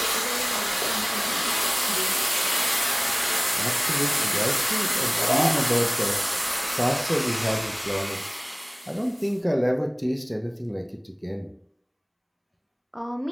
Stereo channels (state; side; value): identical; both; correlation 1.00